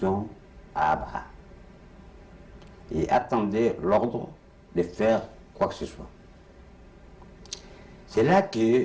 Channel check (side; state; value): both; identical; correlation 1.00